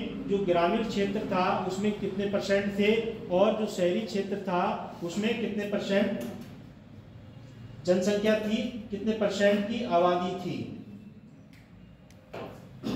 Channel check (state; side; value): identical; both; correlation 1.00